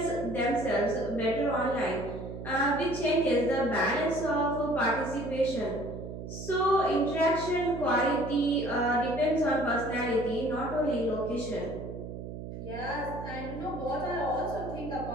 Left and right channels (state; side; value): noise; right; hum, 9 dB below the sound